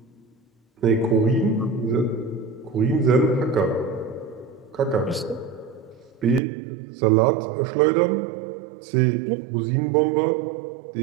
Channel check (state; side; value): drops out; left; at 6.4 s